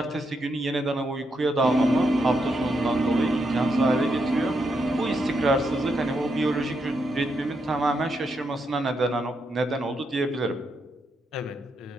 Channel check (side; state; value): both; normal; correlation 0.81